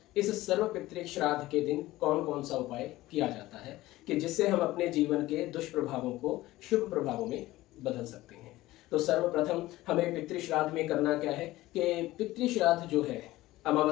इस सर्वपितृ श्राद्ध के दिन कौन कौन सा उपाय किया जाता है कि जिससे हम अपने जीवन के दुष्प्रभावों को शुभ प्रभावों में बदल सकते हैं। तो सर्वप्रथम हमें पितृ श्राद्ध में करना क्या है कि पितृ श्राद्ध जो है,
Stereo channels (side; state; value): right; quieter; 17.3 dB